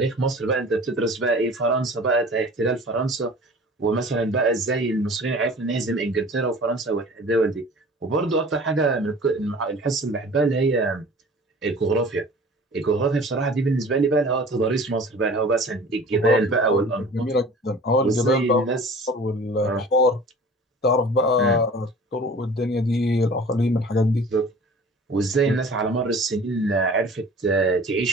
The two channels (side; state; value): both; normal; correlation 0.44